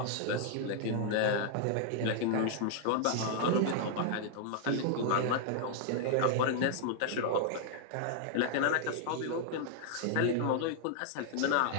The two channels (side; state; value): both; different; correlation 0.00